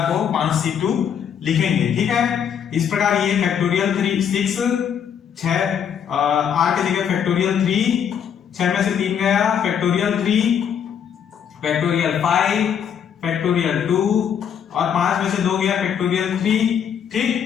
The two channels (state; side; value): quieter; right; 8.2 dB